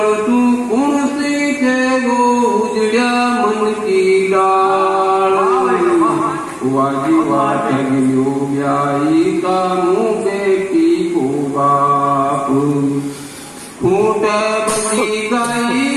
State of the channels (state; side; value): identical; both; correlation 1.00